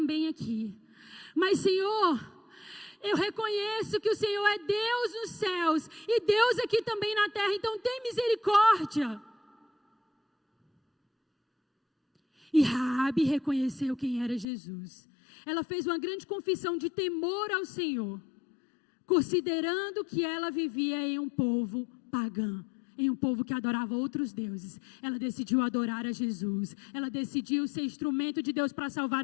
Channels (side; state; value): right; drops out; at 14.5 s